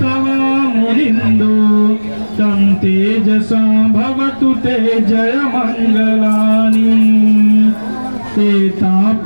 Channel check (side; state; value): both; inverted; correlation -1.00